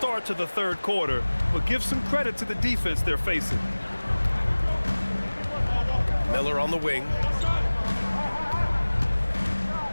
to the third quarter, but give some credit to the defense they're facing. Miller on the wing.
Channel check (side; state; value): both; inverted; correlation -1.00